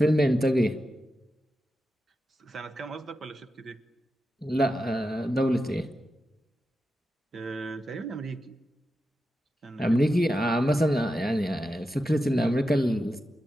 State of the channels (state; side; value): normal; both; correlation 0.90